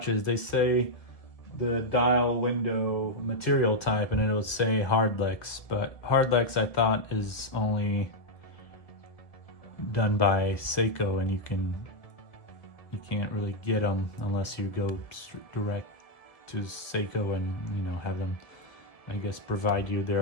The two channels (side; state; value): right; late; 1.7 ms